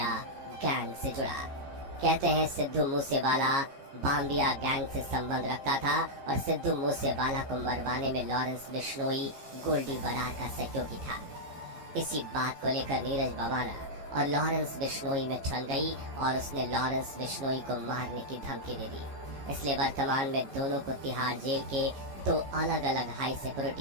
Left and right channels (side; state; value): left; late; 15 ms